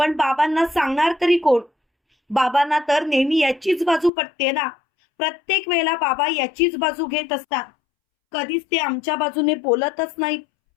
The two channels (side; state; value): right; drops out; at 4.1 s